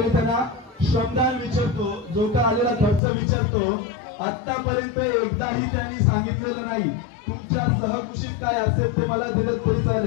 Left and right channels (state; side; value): drops out; right; at 3.0 s